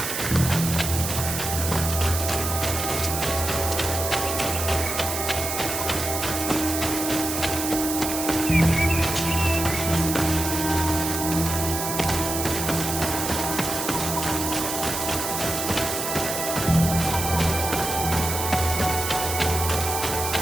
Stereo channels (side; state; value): right; noise; hiss, 3 dB below the sound